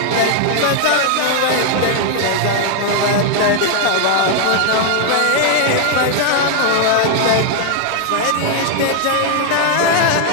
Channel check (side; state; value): both; different; correlation 0.00